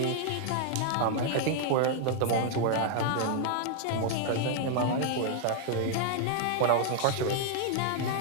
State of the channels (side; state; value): both; different; correlation 0.00